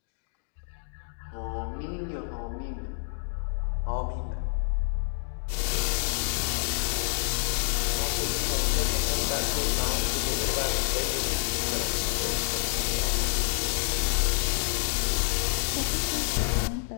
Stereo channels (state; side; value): silent; right; digital silence